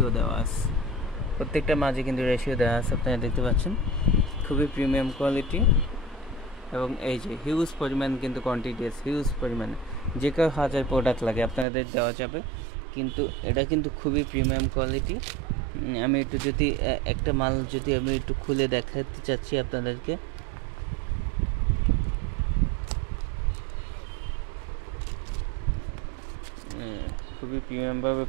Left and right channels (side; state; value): left; drops out; at 11.7 s